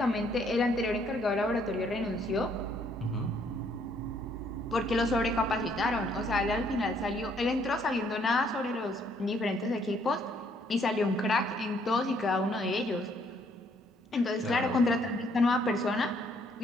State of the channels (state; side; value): normal; both; correlation 0.67